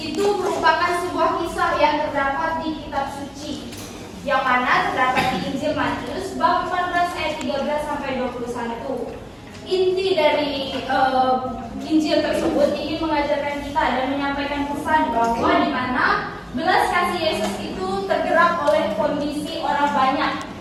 merupakan sebuah kisah yang terdapat di kitab suci, yang mana terdapat di Injil Matius bab 14 ayat 13 sampai 21. Inti dari Injil tersebut ingin mengajarkan kita dan menyampaikan pesan bahwa di mana belas kasih Yesus itu tergerak oleh kondisi orang banyak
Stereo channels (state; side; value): identical; both; correlation 1.00